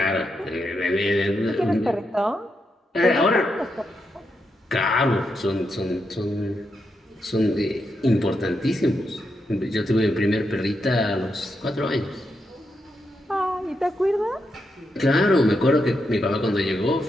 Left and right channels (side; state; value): both; normal; correlation 0.84